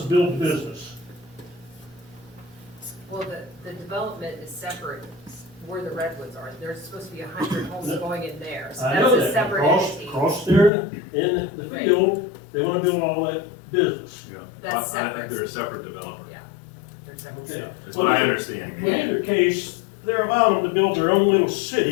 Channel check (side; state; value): right; drops out; at 10.7 s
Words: to build the business? Well, the development is separate where the redwoods are. There's supposed to be 100 homes going in there, so I know that's a that, separate across, entity. across there in the Right. field, they wanna build all that business. Yeah. That's I think separate. they're a separate developer. Yeah, they're separate. Okay. That's what I understand. In either case, they're allowing them to build their own little